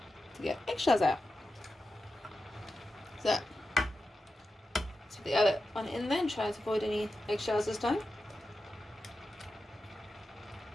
to get eggshells out. So, let's put the other one in there and try to avoid any eggshells this time.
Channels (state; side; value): normal; both; correlation 0.91